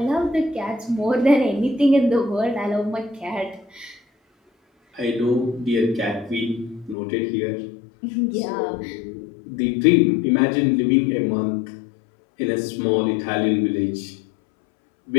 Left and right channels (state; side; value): drops out; right; at 7.0 s